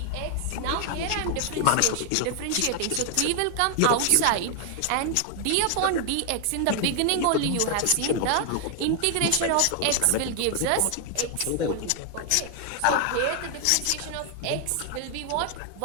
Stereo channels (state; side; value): different; both; correlation 0.00